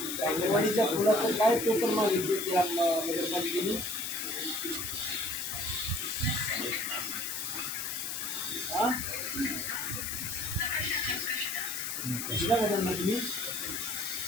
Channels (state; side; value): noise; left; hiss, 4 dB below the sound